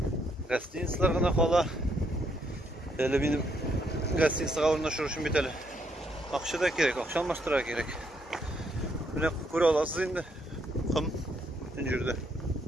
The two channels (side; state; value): both; normal; correlation 0.73